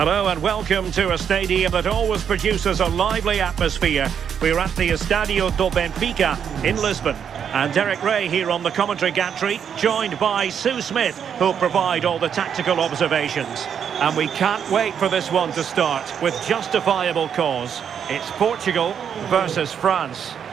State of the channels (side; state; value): left; quieter; 7.9 dB